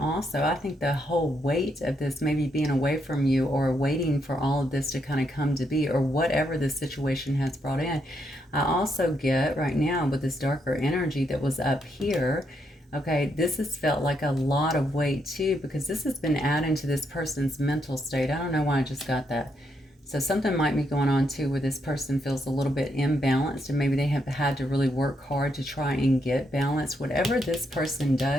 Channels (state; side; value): normal; both; correlation 0.78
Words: also I think the whole weight of this, maybe being away from you or waiting for all of this to kind of come to be, or whatever this situation has brought in. I also get right now with this darker energy that was up here, Okay, this has felt like a lot of weight too, because this has been adding to this person's mental state. I don't know why I just got that. So something might be going on too where this person feels a little bit imbalanced, and maybe they have had to really work hard to try and get balance. Whatever this person